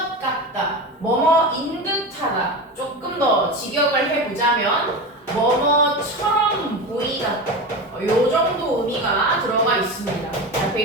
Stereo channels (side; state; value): both; normal; correlation 0.24